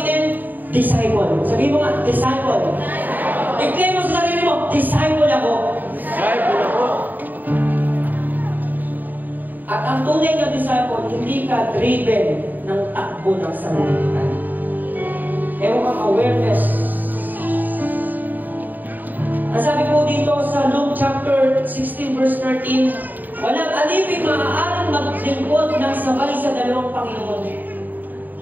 disciple. Sabihin mo nga, disciple. I-claim mo sa sarili mo, disciple ako. Disciple ako. At ang tunay na disciple, hindi ka driven ng takbo ng sanlibutan. Ewan kang awareness. Ang sabi po dito sa Luke chapter 16 verse 13, walang alipin maaaring maglingkod ng sabay sa dalawang Panginoon.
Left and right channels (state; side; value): late; left; 0.087 ms